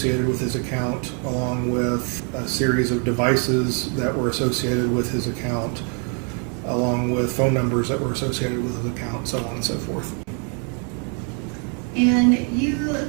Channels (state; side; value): quieter; left; 39.3 dB